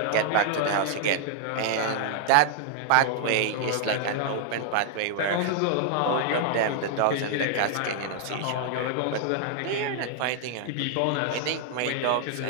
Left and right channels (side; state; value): both; different; correlation 0.00